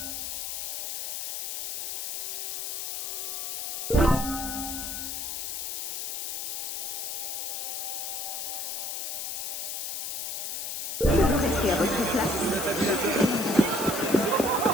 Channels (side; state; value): left; noise; hiss, 3 dB below the sound